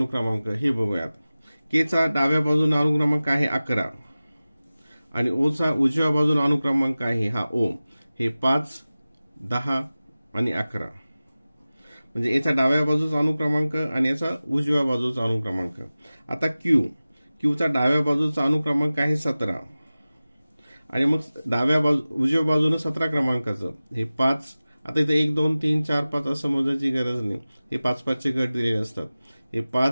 हे बघूयात। के चा डाव्या बाजूने अनुक्रमांक आहे 11 आणि ओ चा उजव्या बाजूने अनुक्रमांक आहे हा ओ, हे 5 10 आणि 11, म्हणजे याचा डाव्या बाजूचा अनुक्रमांक आणि याचा उजव्या बाजूचा अनुक्रमांक। आता क्यू चा डाव्या बाजूचा अनुक्रमांक आहे 17 आणि मग उजव्या बाजूने 17 क्रमांकाचं हे 5। आता इथे 1 2 3 4 5 असं मोजायची गरज नाही, हे 5-5 चे गट दिलेले असतात। हे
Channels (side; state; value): both; inverted; correlation -0.97